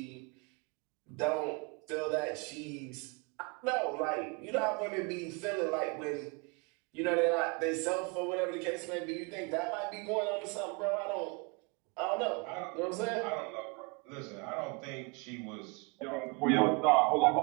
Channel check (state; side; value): quieter; left; 30.6 dB